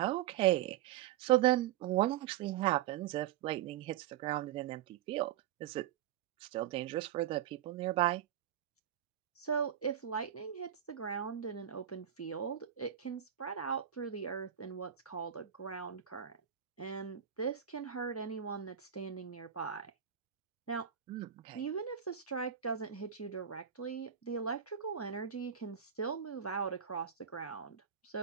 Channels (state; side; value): quieter; left; 10.0 dB